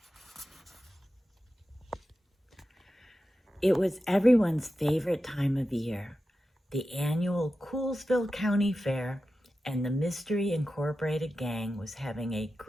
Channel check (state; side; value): normal; both; correlation 0.92